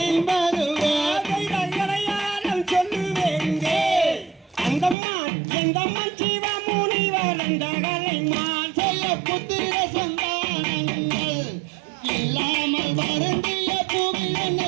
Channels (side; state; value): left; drops out; at 5.0 s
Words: எந்தம்மன் சிவ முனிவர் எந்தகளை மான் செய்ய புத்திர சந்தானங்கள் இல்லாமல் வருந்திய